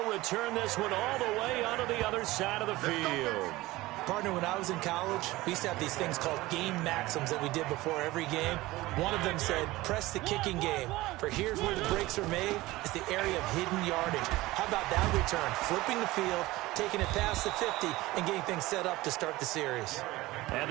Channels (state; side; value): quieter; left; 18.9 dB